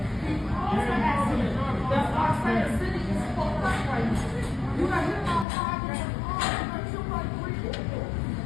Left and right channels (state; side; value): drops out; right; at 5.5 s